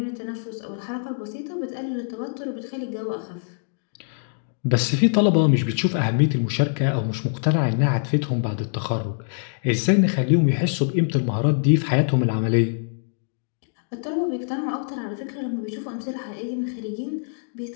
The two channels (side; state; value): right; silent; digital silence